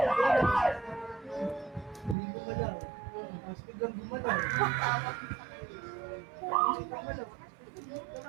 Hindi gumalaw. Mas biglang gumalaw.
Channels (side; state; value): left; drops out; at 2.1 s